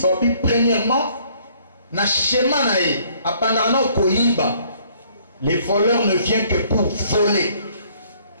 premièrement, na schéma nae, apandana koyiba, les voleurs ne viennent que pour voler.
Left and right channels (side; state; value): both; inverted; correlation -0.62